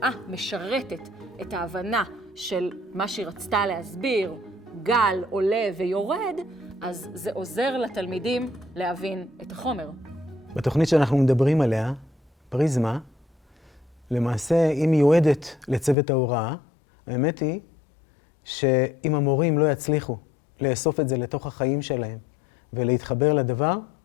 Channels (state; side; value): drops out; right; at 16.0 s